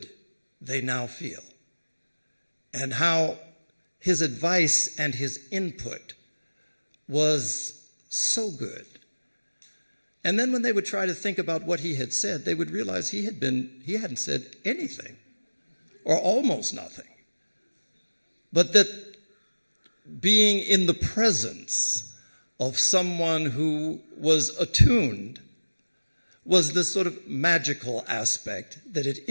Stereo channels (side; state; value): both; inverted; correlation -1.00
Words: they now feel, and how his advice and his input was so good. And then when they would try to think about what he had said, they would realize he hadn't said anything, or almost nothing. But that being in the presence of someone who was attuned was this sort of magical aspect that it